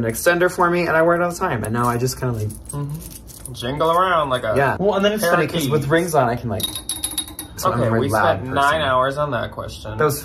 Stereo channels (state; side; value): identical; both; correlation 1.00